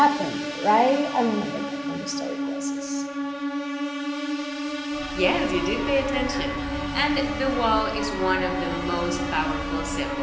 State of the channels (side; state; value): both; identical; correlation 1.00